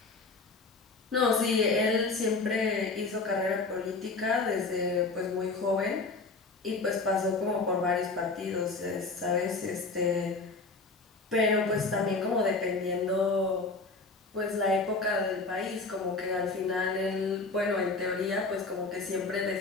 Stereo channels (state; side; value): quieter; right; 3.8 dB